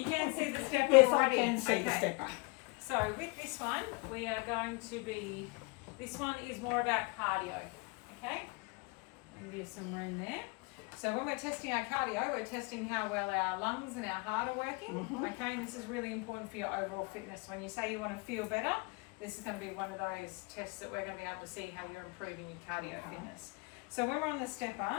can see the stepper Yes, already. I can see the stepper. So with this one, we are going to be, this one is more about cardio, okay? Give you some room there. So when we're testing our cardio, we're testing how well our lungs and our heart are working, okay? And this is really important for your overall fitness. When you say you want to feel better, this is going to be one of those tests that we're going to be able to see how you're improving your cardio fitness. So when we're on the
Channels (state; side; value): quieter; right; 29.2 dB